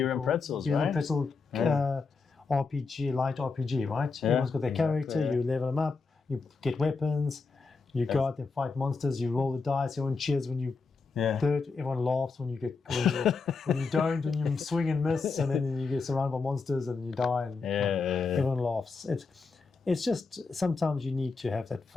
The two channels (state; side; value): quieter; right; 4.4 dB